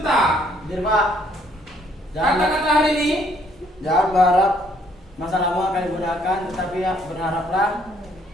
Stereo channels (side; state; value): both; normal; correlation 0.65